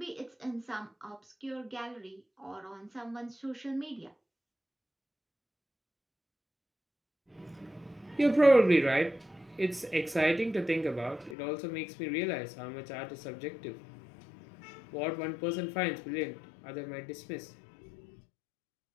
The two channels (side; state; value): right; drops out; at 11.4 s